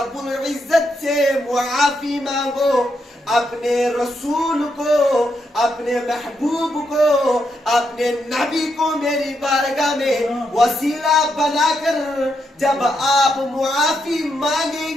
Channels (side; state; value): both; normal; correlation 0.81